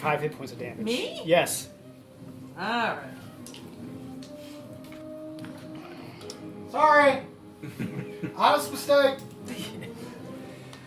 hit points of damage. Me? Yes. Alright. Sorry. Honest mistake.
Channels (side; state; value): both; identical; correlation 1.00